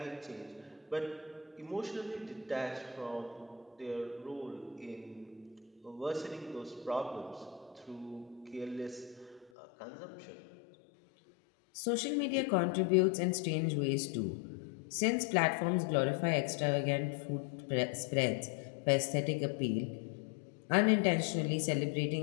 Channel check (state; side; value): drops out; right; at 9.5 s